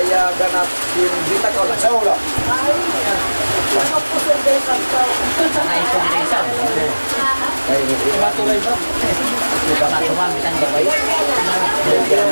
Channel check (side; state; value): both; inverted; correlation -1.00